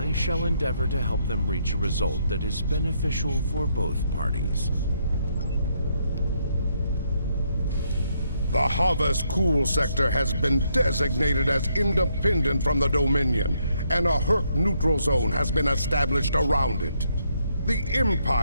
shall endeavor to help them reach a result that is beneficial for both parties. The Havas Cool sector has been designated as independent from the Dominion, and a Herc neutral zone has been established around it. The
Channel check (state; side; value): inverted; both; correlation -0.75